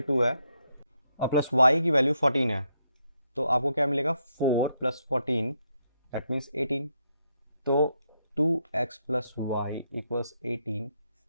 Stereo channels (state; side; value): inverted; both; correlation -0.78